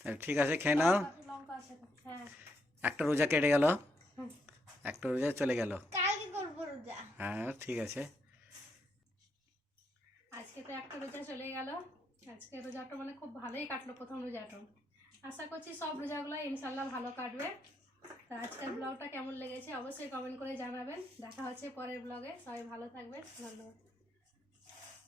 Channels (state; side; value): normal; both; correlation 0.78